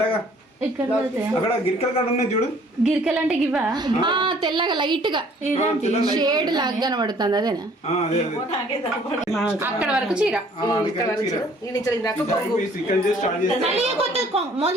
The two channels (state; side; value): normal; both; correlation 0.57